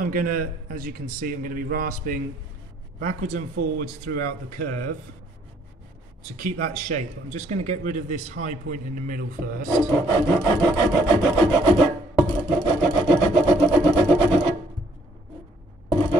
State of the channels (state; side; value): normal; both; correlation 0.64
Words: going to, as you can see, I'm going to be rasping backwards and forwards throughout the curve to keep that shape. I'm just going to get rid of this high point in the middle first.